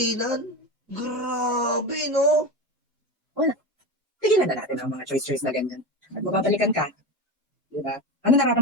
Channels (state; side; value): normal; both; correlation 0.20